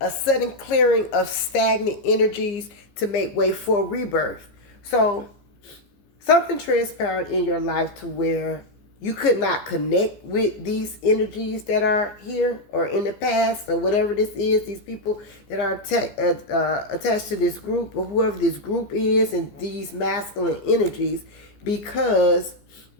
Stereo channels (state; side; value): late; right; 15 ms